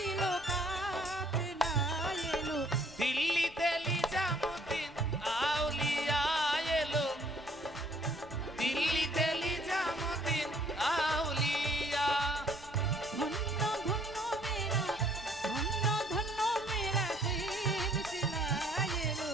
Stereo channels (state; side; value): noise; left; rumble, 23 dB below the sound